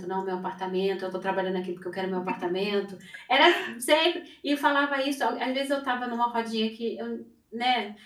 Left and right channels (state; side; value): identical; both; correlation 1.00